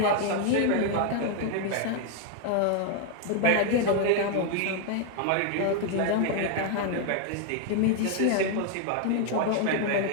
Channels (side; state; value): both; different; correlation 0.00